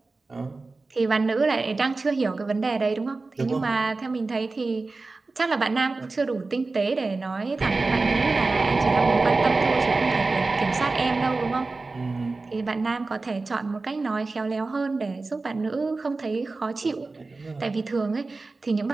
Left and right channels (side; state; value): left; quieter; 3.6 dB